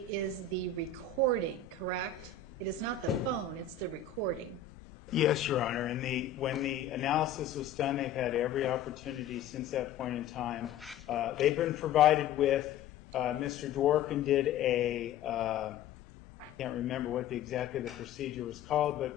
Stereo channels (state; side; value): quieter; right; 7.3 dB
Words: is the recording, correct? It is not the phone, it's the recording. Yes, Your Honor. And when the analysis was done, they've had every opportunity since that point in time. They've been provided with, Mr. Dworkin did I can't remember what exactly the procedure was called,